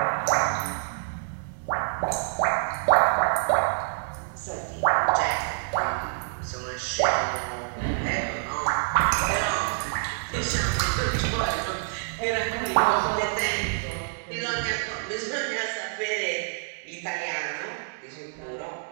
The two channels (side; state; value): left; silent; digital silence